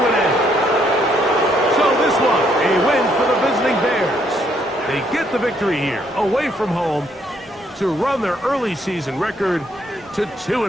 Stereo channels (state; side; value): normal; both; correlation 0.70